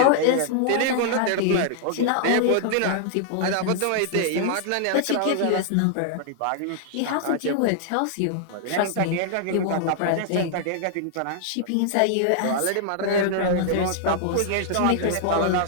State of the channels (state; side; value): different; both; correlation -0.01